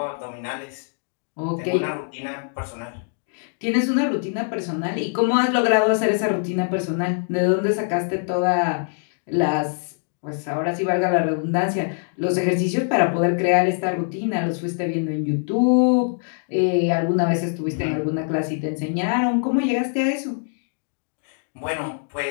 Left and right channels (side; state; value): right; silent; 63 dB below the other